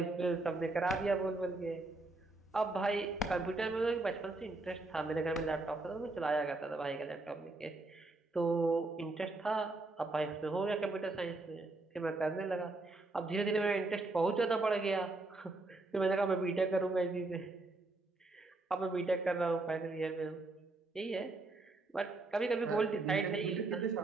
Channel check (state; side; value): quieter; left; 3.2 dB